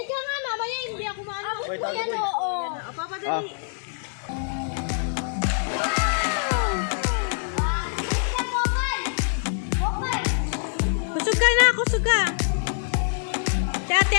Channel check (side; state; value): right; silent; 62 dB below the other